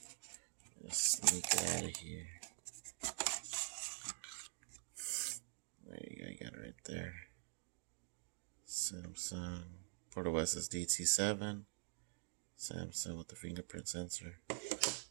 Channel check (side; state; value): left; silent; digital silence